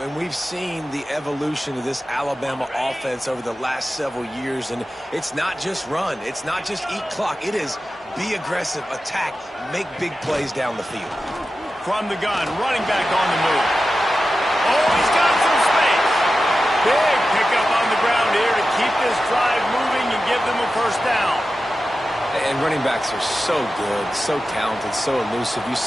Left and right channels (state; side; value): normal; both; correlation 0.93